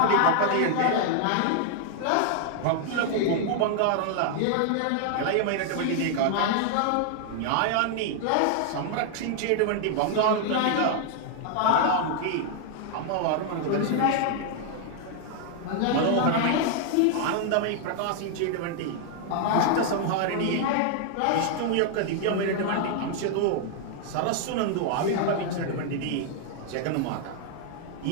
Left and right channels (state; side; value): different; both; correlation 0.00